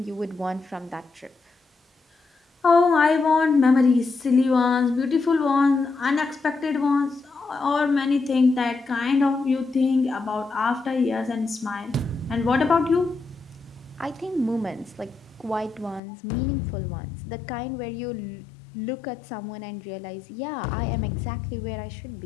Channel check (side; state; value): right; drops out; at 16.0 s